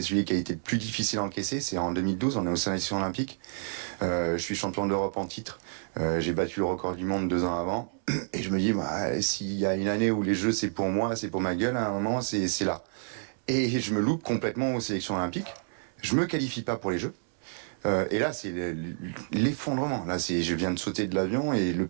celui qui a été le plus difficile à encaisser. C'est en 2012, on est aux sélections olympiques. Je suis champion d'Europe en titre. J'ai battu le record du monde 2 ans avant. Et je me dis, s'il y a une année où les jeux, c'est pour moi, c'est pour ma gueule, à un moment, c'est là. Et je me loupe complètement aux sélections olympiques. Je me qualifie pas pour les Jeux. Et là, c'est l'effondrement. Là, je viens de sauter de l'avion et le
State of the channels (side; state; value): left; silent; digital silence